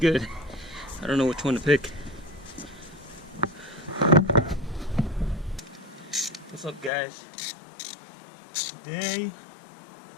I don't know which one to pick. What's up, guys? Today,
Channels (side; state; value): right; drops out; at 6.9 s